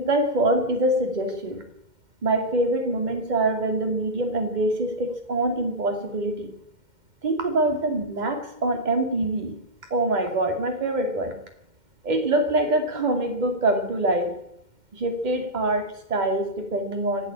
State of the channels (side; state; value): left; late; 2.1 ms